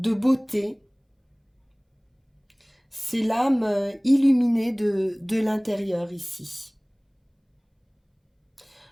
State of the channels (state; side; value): identical; both; correlation 1.00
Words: beauté. C'est l'âme illuminée de l'intérieur ici.